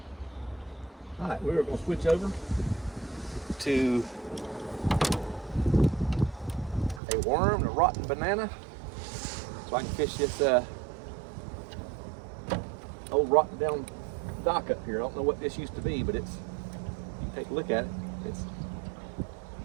All right, we're going to switch over to a worm, a rotten banana, so I can fish this old rotten down dock up here. I don't know what this used to be, but it's, you take a look at it, it's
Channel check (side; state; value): left; drops out; at 7.0 s